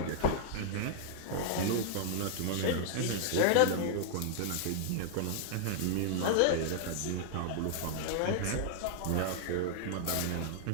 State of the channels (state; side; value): different; both; correlation -0.01